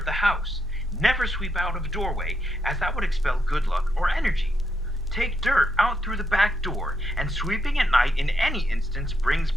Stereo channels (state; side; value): normal; both; correlation 0.80